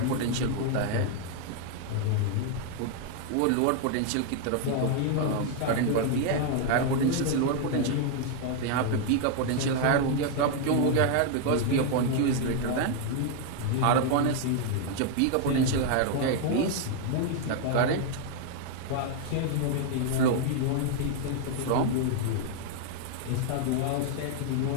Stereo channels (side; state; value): both; different; correlation 0.00